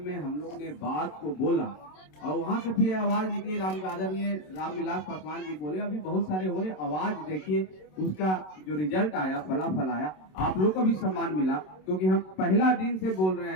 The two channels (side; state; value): right; late; 27 ms